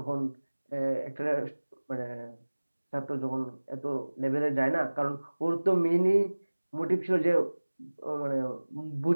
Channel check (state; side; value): inverted; both; correlation -1.00